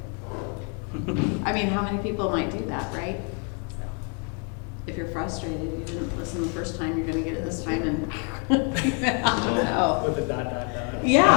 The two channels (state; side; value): quieter; right; 38.6 dB